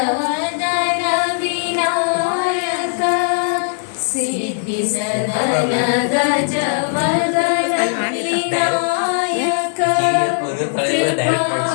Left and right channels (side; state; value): right; silent; digital silence